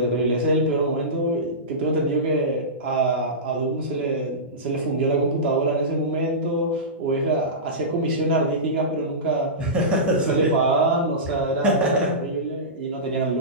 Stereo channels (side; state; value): both; normal; correlation -0.19